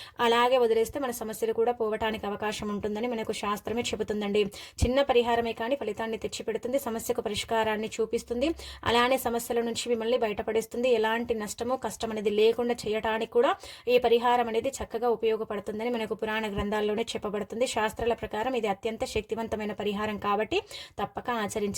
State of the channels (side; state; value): both; identical; correlation 1.00